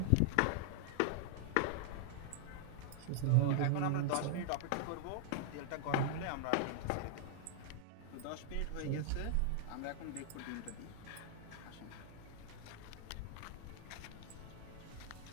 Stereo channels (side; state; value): both; different; correlation 0.00